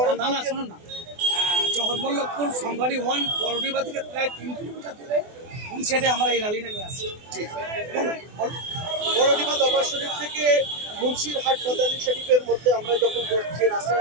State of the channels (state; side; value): late; left; 24 ms